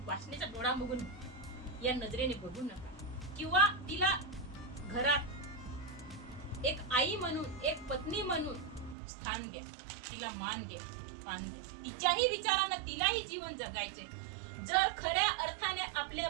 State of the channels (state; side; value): drops out; left; at 9.0 s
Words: वाचण्याचा डोळा बघून, या नजरेने बघू नका. किंवा तिला घरात एक आई म्हणून, एक पत्नी म्हणून स्थान द्या. तिला मान द्या, मान द्या. तिच्याही विचारांना तिलाही जीवन जगायचे. जर खऱ्या अर्थाने आपल्या